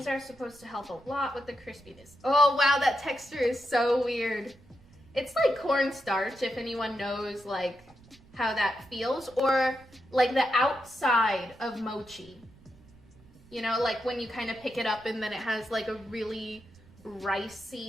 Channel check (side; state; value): right; noise; rumble, 25 dB below the sound